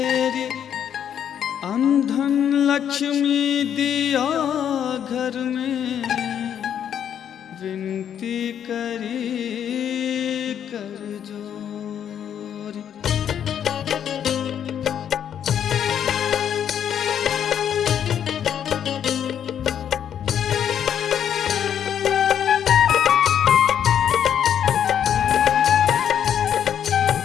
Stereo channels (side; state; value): right; quieter; 9.1 dB